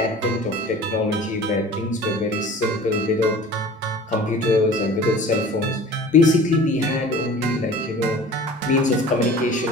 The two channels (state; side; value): normal; both; correlation 0.42